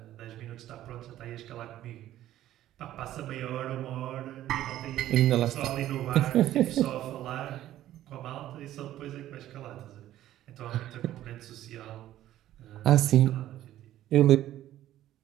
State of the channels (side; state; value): left; quieter; 13.3 dB